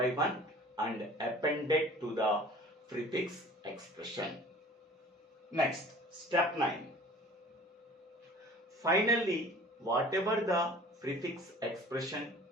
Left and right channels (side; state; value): both; normal; correlation 0.46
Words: one and append it to the prefix expression. Next, step 9. Finally, whatever the prefix expression